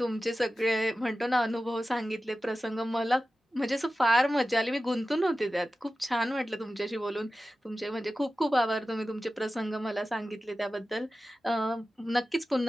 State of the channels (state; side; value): normal; both; correlation 0.94